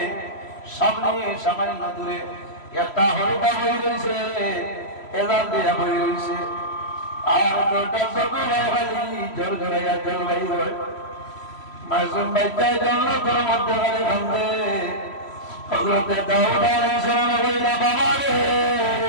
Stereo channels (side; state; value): right; late; 3.1 ms